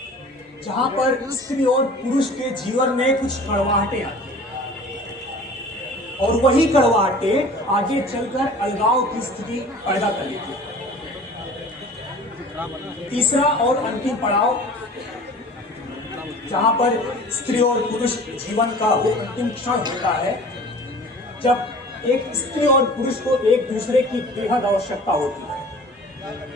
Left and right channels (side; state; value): both; normal; correlation 0.44